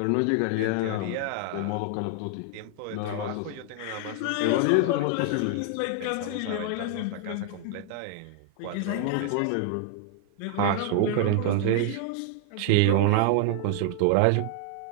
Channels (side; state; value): both; different; correlation 0.00